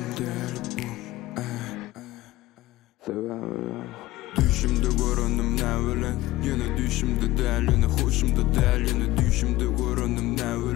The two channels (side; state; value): right; quieter; 17.4 dB